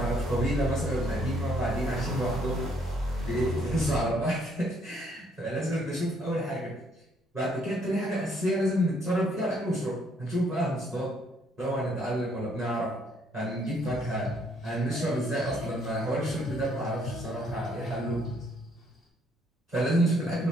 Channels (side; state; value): both; normal; correlation 0.68